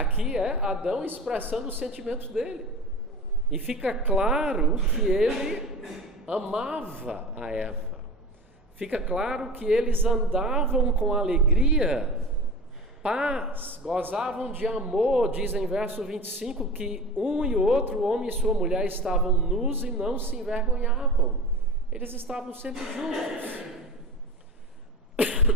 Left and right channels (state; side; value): normal; both; correlation 0.33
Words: é Adão expressando os sentimentos dele. E fica claro que ele amava a Eva. Fica claro que eles andavam com alegria, paz, gozavam de amor. Diz em verso 25 que um e outro, o homem e sua mulher, estavam nus e não se envergonhavam. Eles estavam sempre juntos.